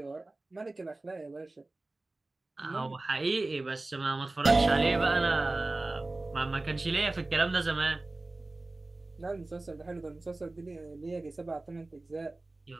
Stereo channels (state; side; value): quieter; left; 3.0 dB